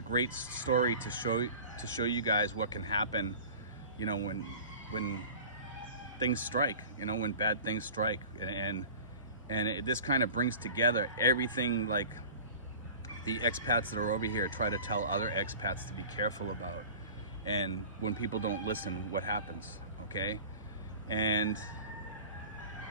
story to show you guys what can happen, you know, when things strike, you know, when bad things strike, this kind of brings together everything like the expats that are over here try to tell other expats to be careful about, and when people don't listen, what happens, okay? And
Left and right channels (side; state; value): both; inverted; correlation -0.40